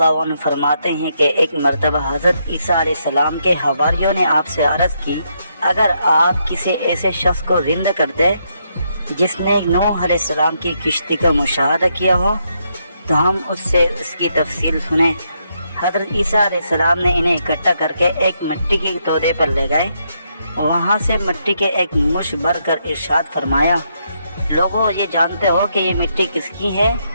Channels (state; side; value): inverted; both; correlation -0.78